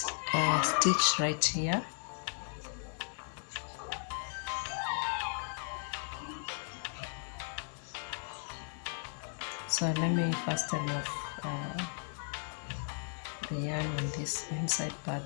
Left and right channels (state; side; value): silent; right; digital silence